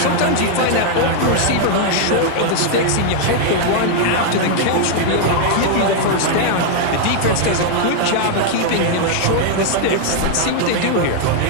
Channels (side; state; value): both; different; correlation 0.00